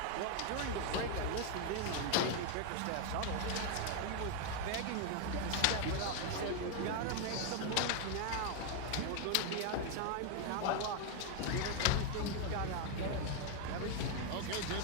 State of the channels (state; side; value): different; both; correlation 0.01